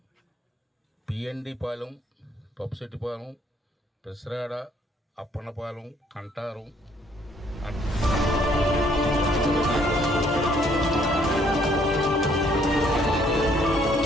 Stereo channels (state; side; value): normal; both; correlation 0.65